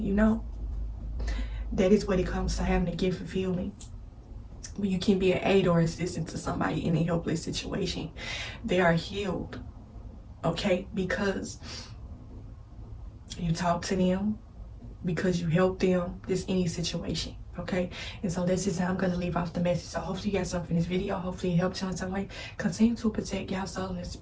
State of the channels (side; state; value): both; identical; correlation 1.00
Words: you know. That is what it comes to having a gift of healing. When you can be an aid or assistant to somebody in a helpless situation, they are healed, okay? Because you talk to them, because you help them, just any situation, okay? And so that's just how I'm going to leave off the message. So hopefully you got something from this video. Hopefully it helped you in some way. Continue to protect your soul and